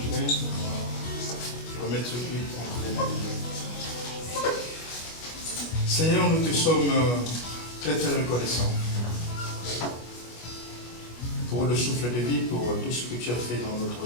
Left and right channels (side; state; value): right; late; 25 ms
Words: Je vais remettre ce culte entre les mains de Dieu. Seigneur, nous te sommes très très reconnaissants pour le souffle de vie, pour tout ce que tu as fait dans notre